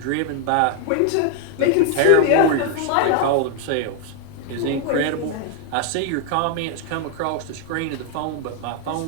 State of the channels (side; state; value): both; different; correlation 0.00